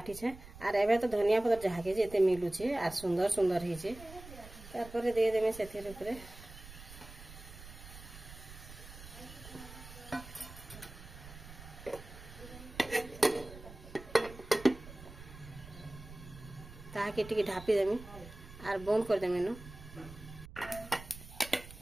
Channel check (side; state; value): right; noise; rumble, 16 dB below the sound